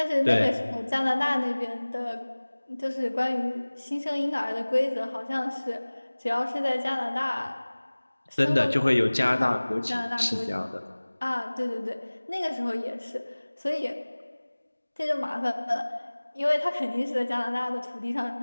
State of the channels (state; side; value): inverted; both; correlation -1.00